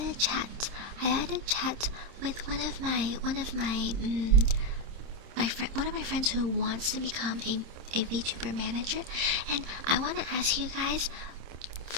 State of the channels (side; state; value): left; late; 27 ms